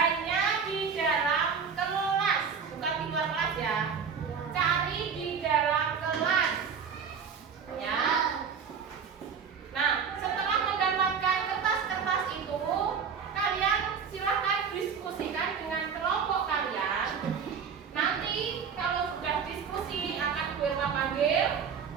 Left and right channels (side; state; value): left; quieter; 6.4 dB